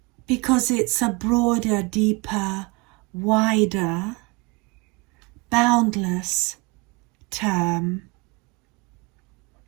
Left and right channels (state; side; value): quieter; left; 26.0 dB